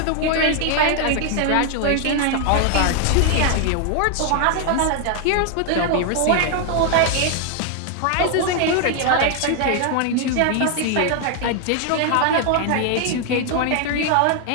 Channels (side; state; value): both; different; correlation 0.00